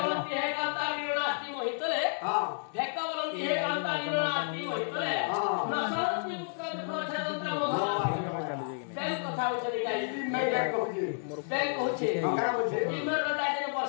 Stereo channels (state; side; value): silent; right; digital silence